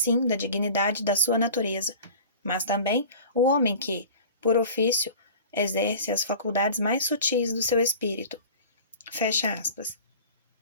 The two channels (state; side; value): inverted; both; correlation -0.40